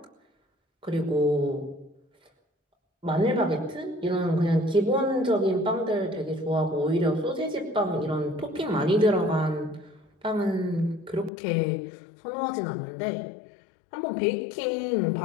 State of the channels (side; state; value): right; drops out; at 11.3 s